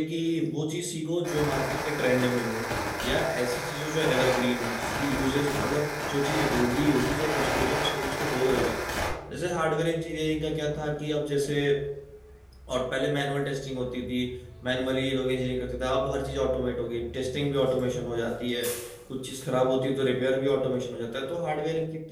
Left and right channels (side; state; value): both; identical; correlation 1.00